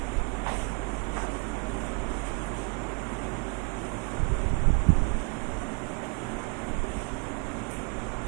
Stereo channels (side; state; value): left; quieter; 33.3 dB